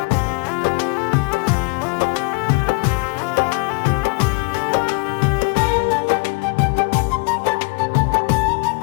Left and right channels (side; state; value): right; quieter; 29.8 dB